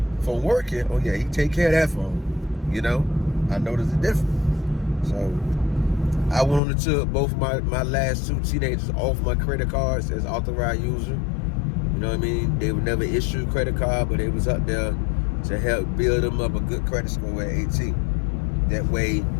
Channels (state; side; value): drops out; right; at 6.6 s